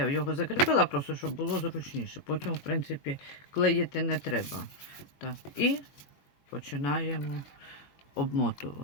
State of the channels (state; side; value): late; right; 22 ms